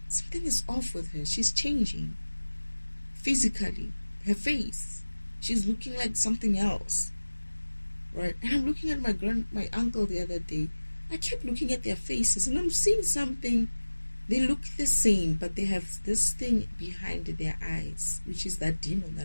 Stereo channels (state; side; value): inverted; both; correlation -1.00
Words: something is off with her. She's changing physically. Her face, she's looking like something else, right? And I'm looking at my uncle the other day. I kept looking at their faces, and I'm seeing something. They look the same, but they have this thing behind their eyes, which is that demon